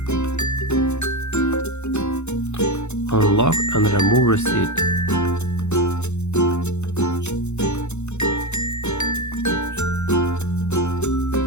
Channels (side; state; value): right; late; 0.82 ms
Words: Unlock and remove receipt.